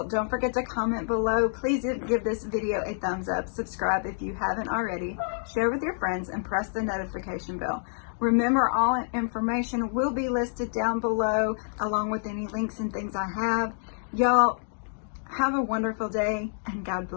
don't forget to comment below. Please give this video a thumbs up. Subscribe if you haven't already. Share with your friends and press the notification bell. Remember, all information will be listed down below, along with any links and things I have. Y'all, have a wonderful day, and God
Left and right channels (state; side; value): silent; right; digital silence